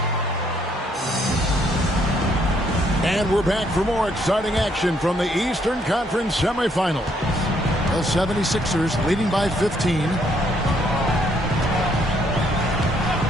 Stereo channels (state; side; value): normal; both; correlation 0.69